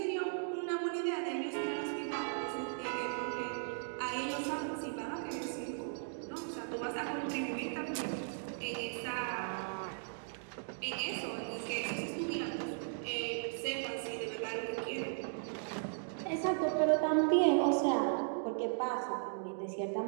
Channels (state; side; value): silent; left; digital silence